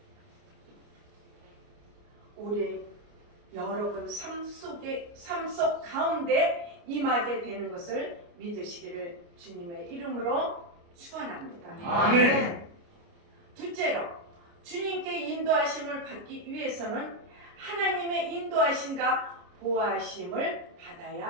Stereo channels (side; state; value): left; late; 29 ms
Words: 우리 여러분 삶 속 가운데 임하게 되는 것을 믿으시기를 주님의 이름으로 축원합니다. 아멘. 둘째로 주님께 인도하심을 받기 위해서는 하나님의 인도하심과 보호하심을